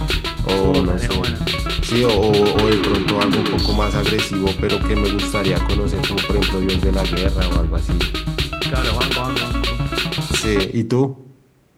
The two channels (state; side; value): identical; both; correlation 1.00